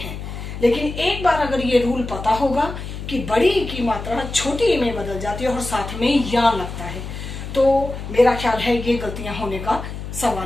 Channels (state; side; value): noise; left; hum, 8 dB below the sound